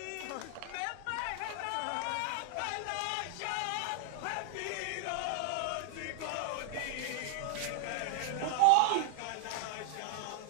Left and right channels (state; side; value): different; both; correlation 0.00